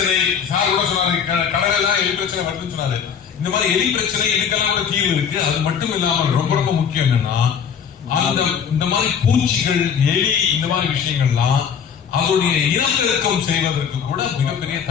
சார் கூட சொன்னாரு, கடலெல்லாம் எலி பிரச்சனை வருதுன்னு சொன்னாரு. இந்த மாதிரி எலி பிரச்சனை இதுக்கெல்லாம் கூட தீர்வு இருக்கு. அது மட்டும் இல்லாமல் ரொம்ப ரொம்ப முக்கியம் என்னன்னா, அந்த இந்த மாதிரி பூச்சிகள், எலி, இந்த மாதிரி விஷயங்கள்லாம் அதோடைய இனப்பெருக்கம் செய்வதற்கு கூட மிகப்பெரிய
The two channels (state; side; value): quieter; right; 7.4 dB